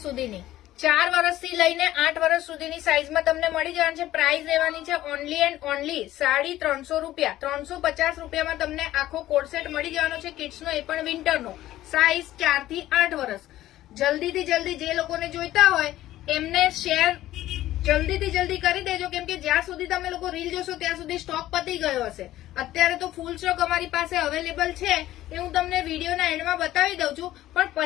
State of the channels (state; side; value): quieter; right; 14.5 dB